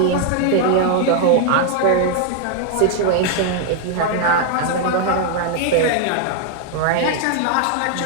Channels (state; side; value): different; both; correlation 0.00